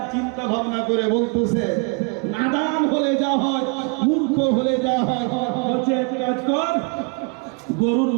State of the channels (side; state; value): left; quieter; 34.4 dB